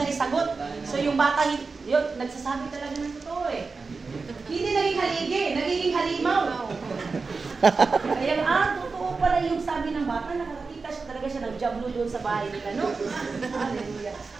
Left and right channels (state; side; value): quieter; left; 4.4 dB